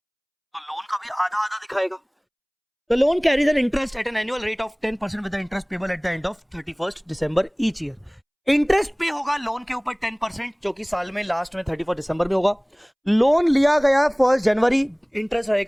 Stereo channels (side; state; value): both; identical; correlation 1.00